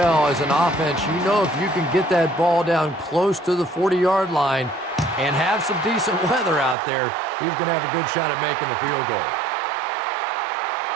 as an offense. You know, if you can get that ball down close to the 40-yard line and have some decent weather out there, he's going to have a good shot at making the field goal.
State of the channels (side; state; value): left; drops out; at 6.8 s